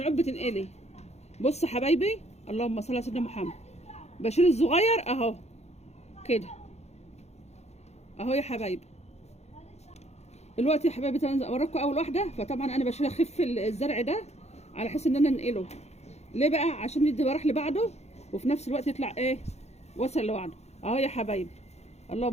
بتنقلي. بص يا حبايبي، اللهم صل على سيدنا محمد، بشيل الصغير اهو كده اهو يا حبايبي. دلوقتي يا حبايبي انا اوريكم اول واحده، فطبعا انا بشيل اخف الزرع ده على حيث ان انا انقله. ليه بقى؟ عشان يدي براح لبعضه وفي نفس الوقت يطلع وصل لوحده اهو يا حبايبي.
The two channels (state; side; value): late; right; 0.31 ms